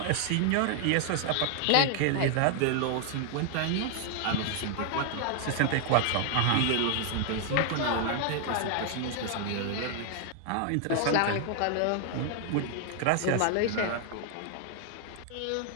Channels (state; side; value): different; both; correlation 0.00